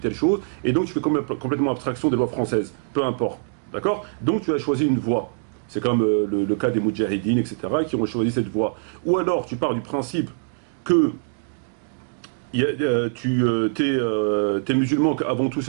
chose, et donc tu fais complètement abstraction des lois françaises, peu importe. D'accord? Donc tu as choisi une voie. C'est comme le cas des Moudjahidines, etc., qui ont choisi cette voie. Ou alors tu pars du principe que t'es musulman, qu'avant tout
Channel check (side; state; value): left; silent; digital silence